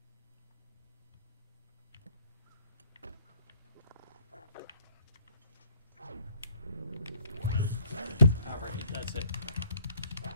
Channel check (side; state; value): both; inverted; correlation -0.61